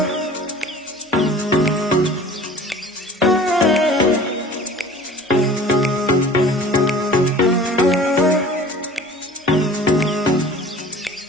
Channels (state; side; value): normal; both; correlation 0.44